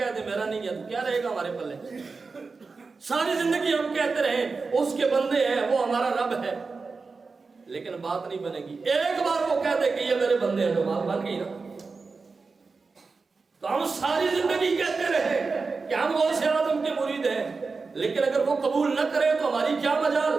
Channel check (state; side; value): quieter; left; 4.4 dB